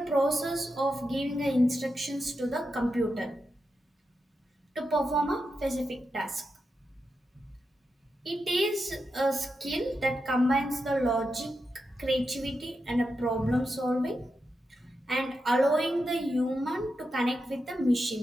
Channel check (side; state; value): both; normal; correlation 0.87